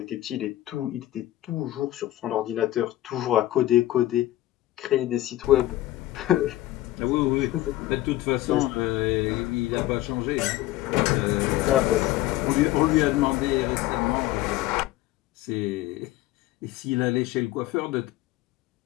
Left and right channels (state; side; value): quieter; right; 15.8 dB